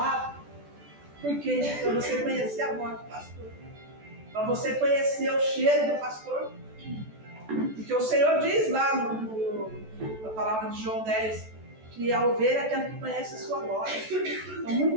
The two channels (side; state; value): left; late; 14 ms